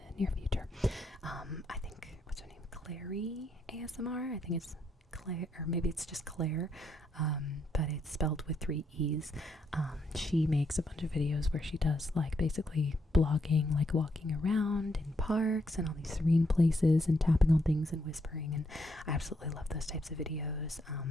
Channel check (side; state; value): both; normal; correlation 0.76